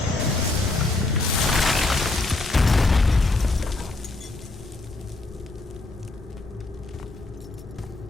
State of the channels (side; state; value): right; quieter; 3.1 dB